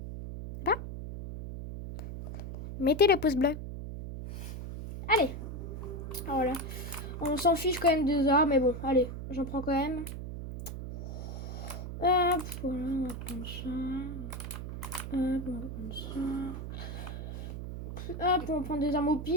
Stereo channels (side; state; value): right; noise; hum, 7 dB below the sound